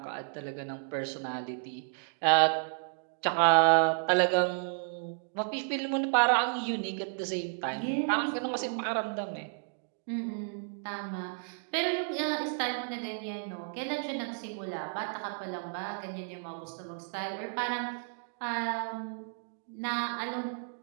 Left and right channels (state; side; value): silent; left; digital silence